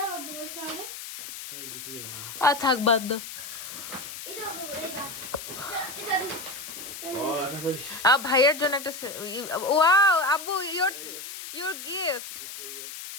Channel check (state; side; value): noise; left; hiss, 10 dB below the sound